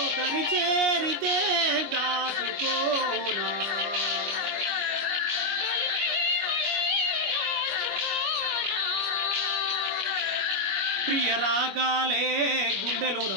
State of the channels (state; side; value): late; left; 25 ms